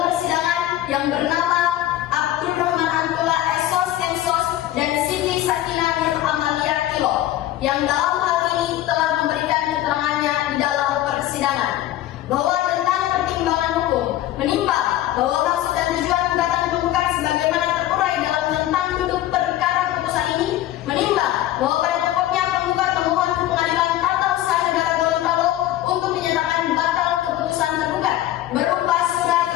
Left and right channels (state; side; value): quieter; right; 13.9 dB